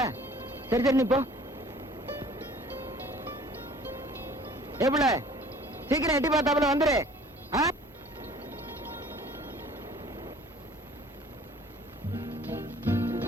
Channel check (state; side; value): normal; both; correlation 0.51